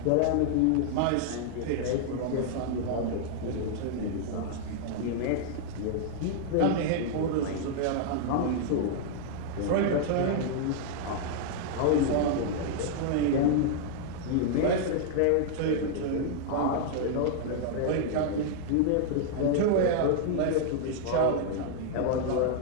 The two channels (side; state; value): both; different; correlation -0.01